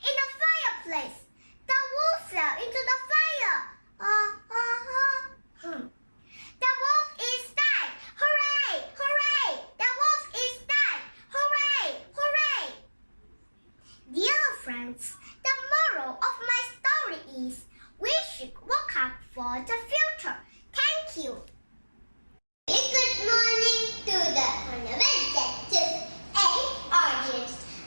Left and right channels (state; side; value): inverted; both; correlation -1.00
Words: in the fireplace. The wolf fell into the fire. The wolf is dead! Hooray! The wolf is dead! Hooray! Dear friends, the moral of my story is we should work hard for the future. Thank you. Good morning to the Honorable and audience.